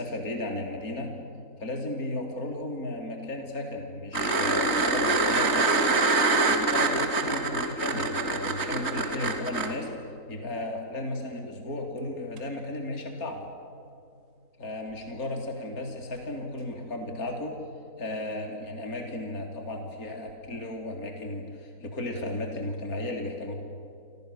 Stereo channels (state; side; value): late; right; 3.9 ms